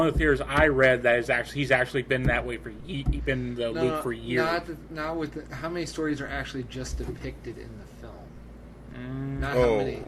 of the theories I read that is he's actually been that way been in the loop for years. Not with how many stories are actually just depicted in the film. Not Oh, how many.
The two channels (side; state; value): both; identical; correlation 1.00